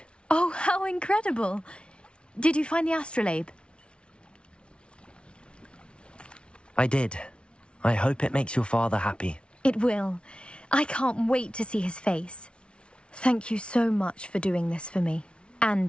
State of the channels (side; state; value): right; late; 0.058 ms